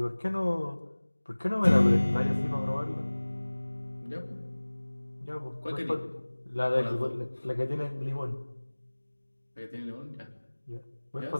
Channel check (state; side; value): inverted; both; correlation -1.00